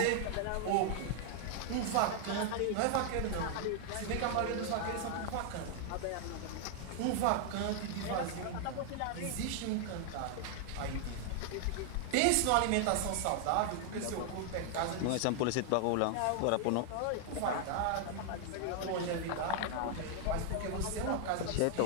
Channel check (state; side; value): different; both; correlation 0.00